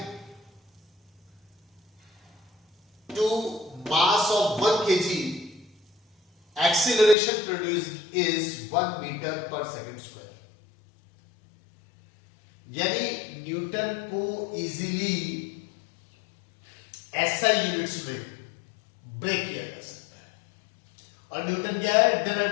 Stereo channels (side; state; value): right; drops out; at 7.2 s